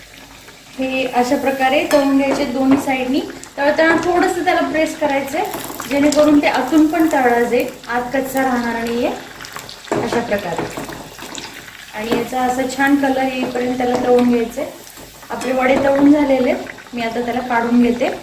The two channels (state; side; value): identical; both; correlation 1.00